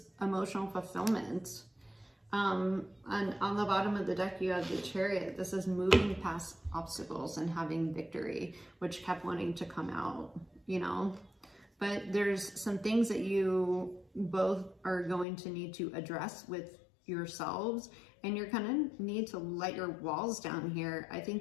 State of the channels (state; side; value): drops out; right; at 15.2 s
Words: emotional fulfillment. And on the bottom of the deck, you have the Chariot. This is moving past obstacles and having victory, which kept wanting to come out, you know? But there's some things that you both are going to need to address with yourselves, and you're gonna need to let your walls down here. I